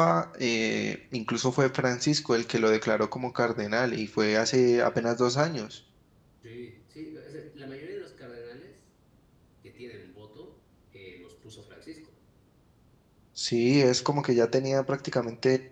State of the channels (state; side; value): identical; both; correlation 1.00